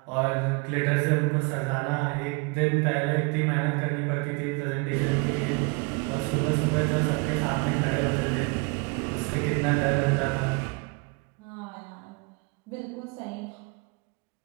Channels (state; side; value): quieter; left; 29.9 dB